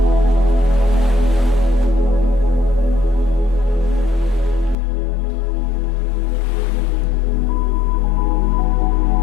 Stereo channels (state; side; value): drops out; right; at 4.8 s